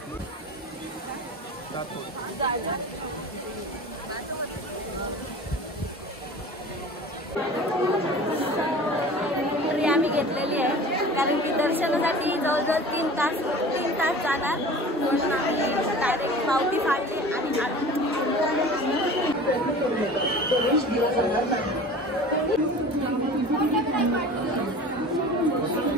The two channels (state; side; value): normal; both; correlation 0.40